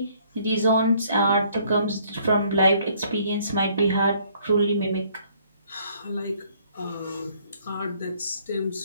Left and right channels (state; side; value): inverted; both; correlation -0.63